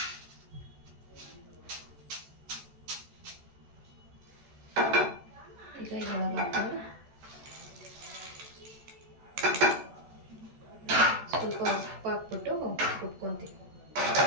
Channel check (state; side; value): late; left; 14 ms